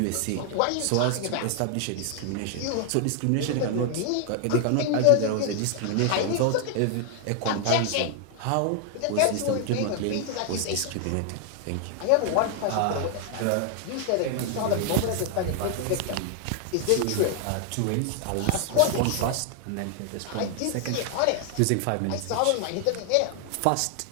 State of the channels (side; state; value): both; different; correlation 0.00